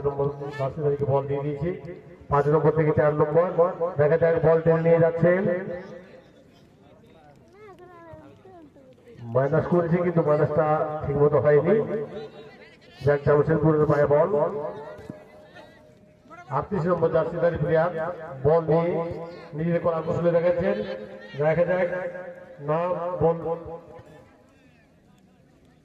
নম্বর জার্সিধারীকে বল দিয়ে দিয়েছে। 5 নম্বর থেকে 4 নম্বর, দেখা যাক বল টেনে নিয়ে যাচ্ছেন, মাইনাস করেছে কিন্তু মাইনাসটা ঠিক মতো হয়নি। যাক, জামশেদপুরের পায়ে বল। 38 নম্বর জার্সিধারী প্লেয়ার বল নিয়ে নিজেদের করা কৌশলে দেখাচ্ছেন, দেখা যাক না বল।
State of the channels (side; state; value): both; identical; correlation 1.00